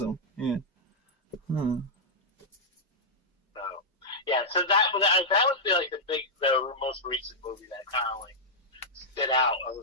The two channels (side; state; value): both; normal; correlation -0.07